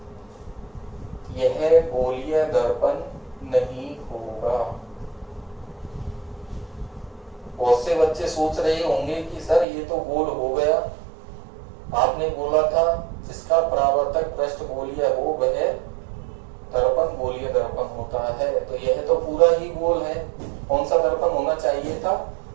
यह गोलीय दर्पण नहीं होगा। बहुत से बच्चे सोच रहे होंगे कि सर ये तो गोल हो गया, आपने बोला था जिसका परावर्तक पृष्ठ गोलीय हो वह दर्पण गोलीय दर्पण होता है, तो यह तो पूरा ही गोल है। कौन सा दर्पण होना चाहिए था,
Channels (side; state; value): left; drops out; at 9.7 s